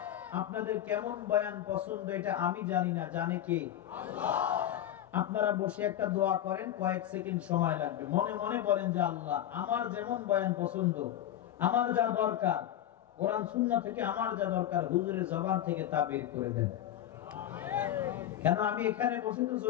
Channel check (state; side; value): quieter; right; 11.6 dB